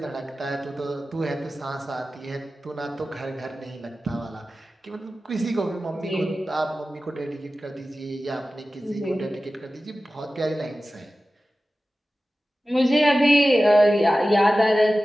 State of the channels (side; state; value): both; normal; correlation 0.95